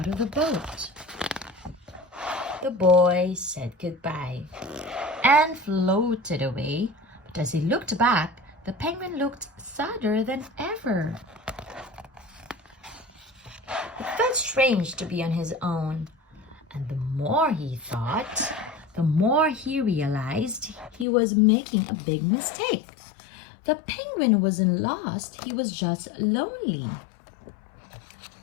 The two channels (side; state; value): right; drops out; at 21.1 s